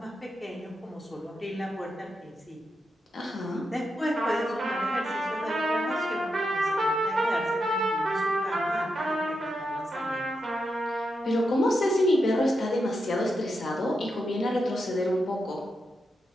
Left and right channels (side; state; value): both; normal; correlation 0.85